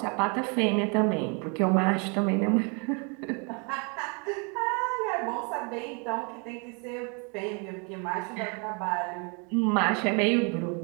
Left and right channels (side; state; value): left; quieter; 34.7 dB